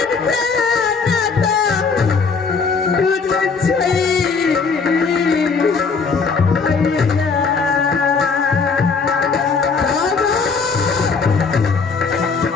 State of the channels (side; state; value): right; quieter; 5.0 dB